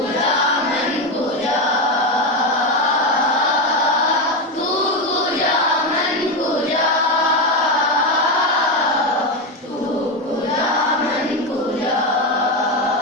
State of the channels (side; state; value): both; normal; correlation 0.12